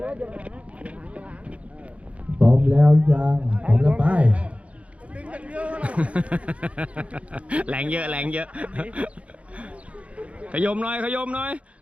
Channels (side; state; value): left; late; 0.064 ms